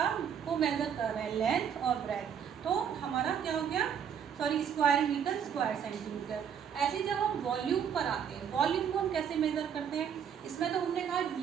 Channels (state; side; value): quieter; left; 8.1 dB